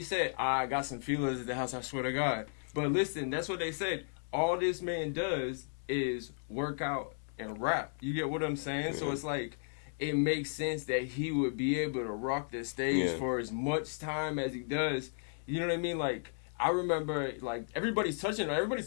said. I got some feelers at the house, I swear to God. But listen, that's what they said. All this man does is work out and rap. You get what I'm saying? Yeah. So it's like, it makes sense that he would be able to rock the stage for as much time as he does. You know what I mean? Like, I remember, like, everybody's talking about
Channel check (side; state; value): right; silent; digital silence